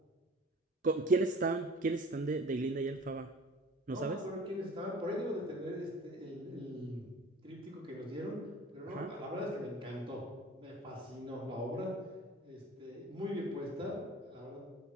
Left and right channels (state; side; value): normal; both; correlation 0.44